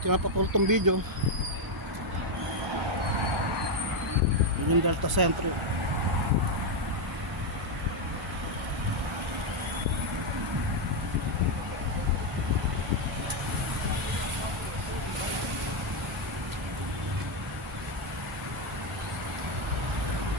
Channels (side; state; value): both; normal; correlation 0.03